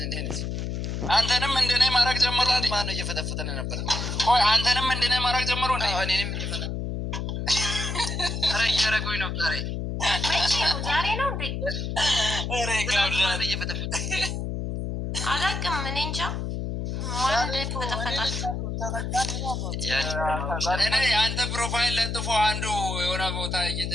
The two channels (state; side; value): noise; left; hum, 3 dB below the sound